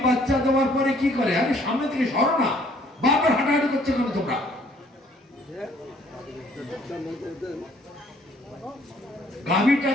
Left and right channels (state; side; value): normal; both; correlation 0.61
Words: বাচ্চা দেওয়ার পরে কি করে? আরে সামনে থেকে সরো না, বারবার হাঁটাহাঁটি করছে কেন তোমরা? গাভীটা